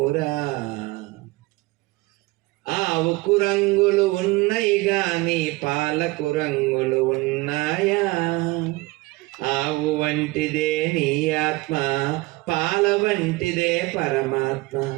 ఆవుకు రంగులు ఉన్నాయి గాని పాలకు రంగులు ఉన్నాయా, ఆవు వంటిదే నీ ఆత్మ, పాల వంటిదే పరమాత్మ,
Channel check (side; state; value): left; quieter; 22.3 dB